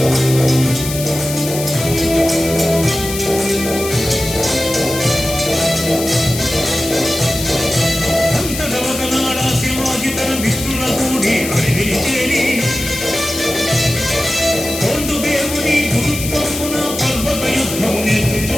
అంతటా ఒకనాడ శివాజీ తన మిత్రుల కూడి అడవిని చేరి కొండు దేవుని గురుత్వమున పర్వత యుద్ధం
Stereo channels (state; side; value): noise; left; hiss, 7 dB below the sound